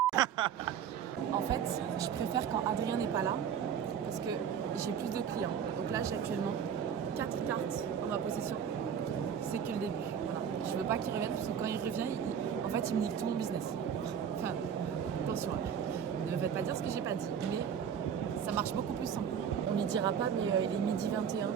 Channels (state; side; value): quieter; left; 8.0 dB